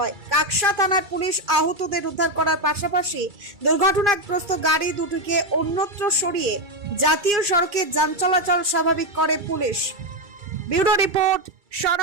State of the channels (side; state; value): left; late; 2.4 ms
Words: কাকসা থানার পুলিশ আহতদের উদ্ধার করার পাশাপাশি দুর্ঘটনাগ্রস্ত গাড়ি দুটিকে অন্যত্র সরিয়ে জাতীয় সড়কে যান চলাচল স্বাভাবিক করে police. Bureau report, son